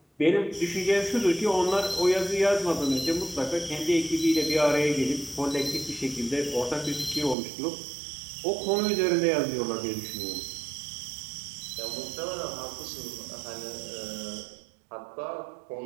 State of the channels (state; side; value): drops out; left; at 7.4 s